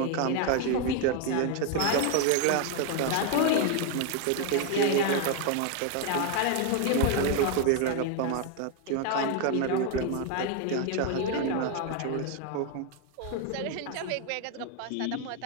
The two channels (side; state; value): both; different; correlation 0.01